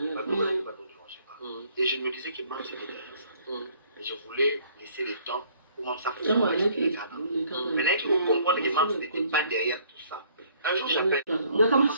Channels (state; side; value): inverted; both; correlation -0.60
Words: et je me disais que Marc c'était derrière ça. Et je voulais laisser le temps comment ça fonctionne. Maintenant, il faut comprendre que Mams n'était pas derrière tout ça. Un jour, j'appelle.